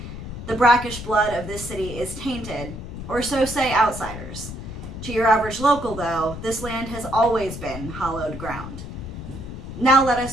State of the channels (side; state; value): left; noise; rumble, 9 dB below the sound